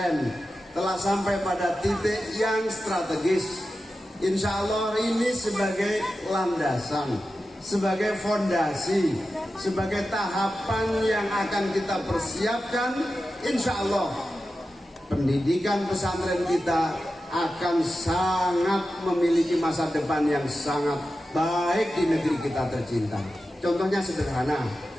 telah sampai pada titik yang strategis. Insya Allah ini sebagai landasan, sebagai fondasi, sebagai tahapan yang akan kita persiapkan. Insya Allah pendidikan pesantren kita akan sangat memiliki masa depan yang sangat baik di negeri kita tercinta. Contohnya sederhana,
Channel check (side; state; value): both; normal; correlation 0.92